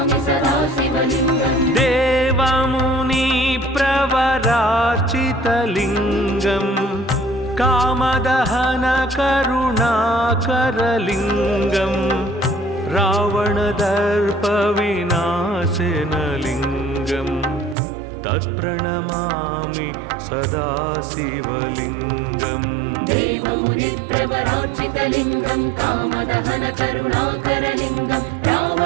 सदा शिवलिङ्गम् देवमुनिप्रवरार्चितलिङ्गम् कामदहनकरुणाकरलिङ्गम् रावणदर्पविनाशनलिङ्गम् तत्प्रणमामि सदा शिवलिङ्गम् देवमुनिप्रवरार्चितलिङ्गं कामदहनकरुणाकरलिङ्गं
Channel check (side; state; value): left; drops out; at 17.8 s